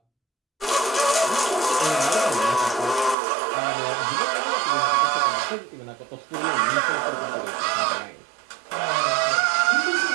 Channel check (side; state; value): left; drops out; at 3.2 s